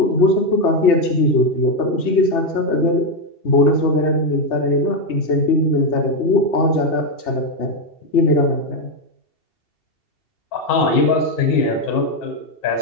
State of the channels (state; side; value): late; right; 2.7 ms